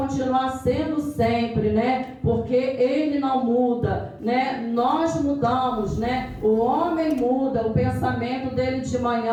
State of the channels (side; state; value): both; identical; correlation 1.00